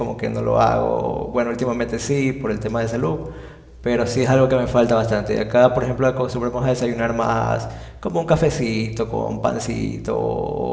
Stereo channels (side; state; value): both; identical; correlation 1.00